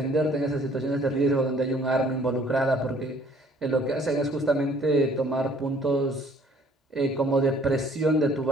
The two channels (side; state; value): both; normal; correlation 0.58